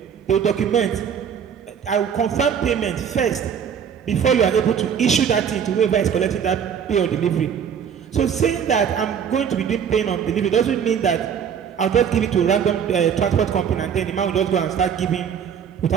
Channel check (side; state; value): left; quieter; 7.8 dB